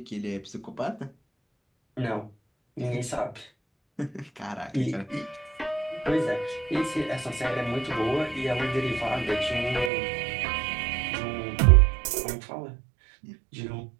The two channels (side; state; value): left; drops out; at 9.9 s